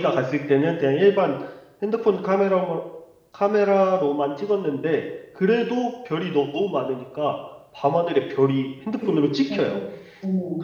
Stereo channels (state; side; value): identical; both; correlation 1.00